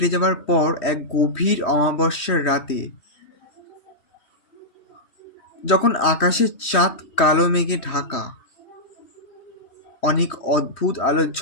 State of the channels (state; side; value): late; right; 3.1 ms